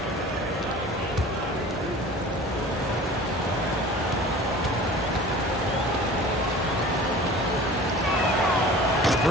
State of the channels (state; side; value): normal; both; correlation 0.42